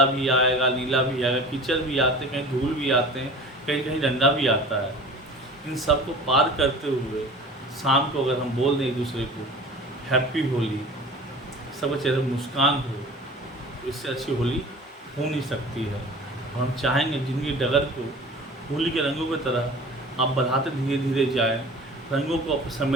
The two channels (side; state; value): both; normal; correlation 0.40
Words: भी आएगा, नीला भी आएगा, कीचड़ भी आते हैं, कहीं धूल भी आते हैं, कहीं कहीं डंडा भी आता है। इन सब को पार करते हुए शाम को अगर हम बोल दें एक दूसरे को हैप्पी होली, सबके चेहरे पर मुस्कान हो, तो इससे अच्छी होली हो नहीं सकती है। और हम चाहेंगे जिंदगी डगर को होली के रंगों की तरह आप बढ़ाते धीरे धीरे जाए, रंगों को आप